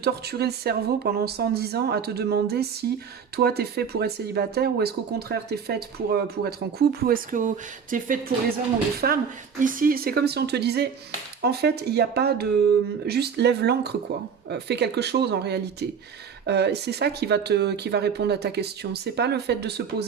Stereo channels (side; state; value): left; quieter; 6.7 dB